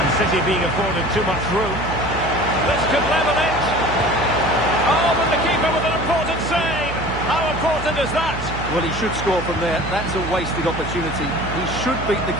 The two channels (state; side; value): noise; right; hum, 8 dB below the sound